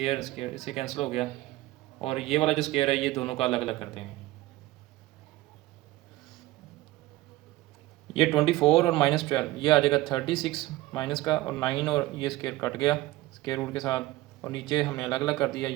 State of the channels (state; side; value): quieter; left; 17.7 dB